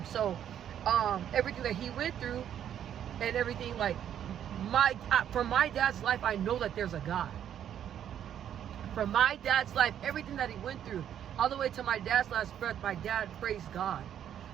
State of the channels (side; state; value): left; quieter; 9.9 dB